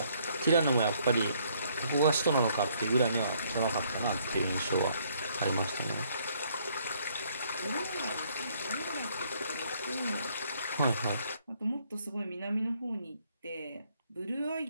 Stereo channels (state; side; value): inverted; both; correlation -0.66